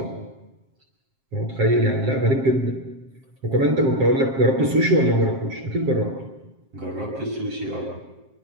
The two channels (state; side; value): late; left; 7.5 ms